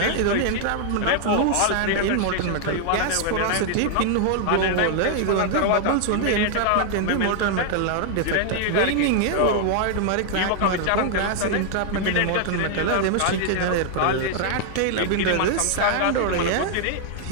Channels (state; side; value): different; both; correlation 0.00